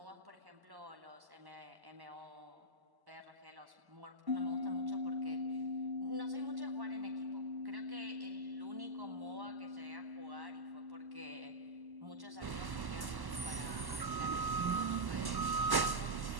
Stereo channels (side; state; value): left; late; 1.1 ms